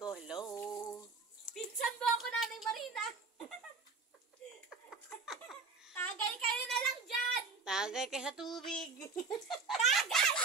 hello. Pinsan mo ako, Nanay Marina. Tagay kayo na lang dyan. Tagay kayo sa tubig. Tagay!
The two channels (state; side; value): quieter; left; 4.5 dB